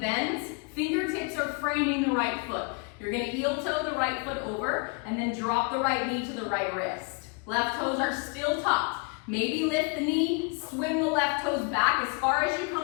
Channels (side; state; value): right; quieter; 32.6 dB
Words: Fingertips are framing the right foot. You're gonna heel toe the right foot over and then drop the right knee to the right wrist. Left toes are still tucked. Maybe lift the knee, swing the left toes back as far as you